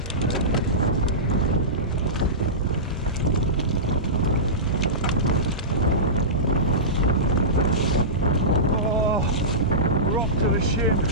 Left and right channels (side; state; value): both; normal; correlation -0.19